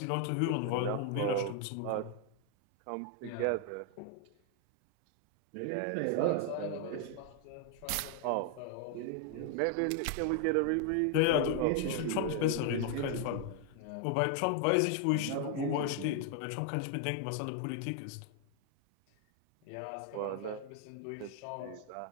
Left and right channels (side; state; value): both; different; correlation 0.00